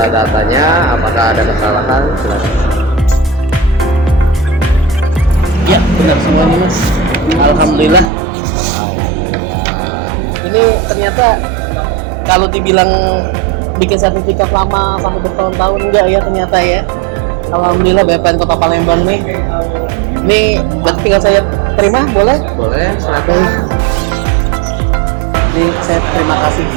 apakah ada kesalahan. Silakan. Ya, benar semuanya Mas. Alhamdulillah. Ini ternyata kalau dibilang bikin sertifikat lama sampai bertahun-tahun enggak ya ternyata ya. Alhamdulillah BPN Kota Palembang nih. Ini berarti tinggal saya terima, boleh? Boleh, silakan. Jadi saya terima kasih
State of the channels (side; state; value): left; drops out; at 8.1 s